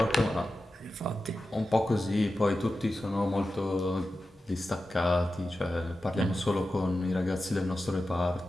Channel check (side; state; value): both; normal; correlation 0.93